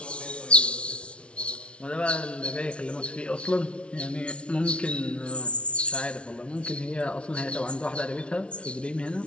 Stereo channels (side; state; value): right; late; 0.060 ms